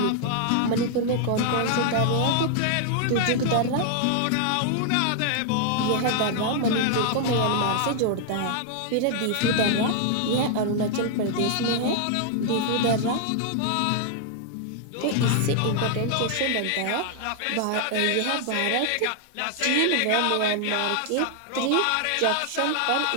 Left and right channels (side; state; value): both; different; correlation 0.00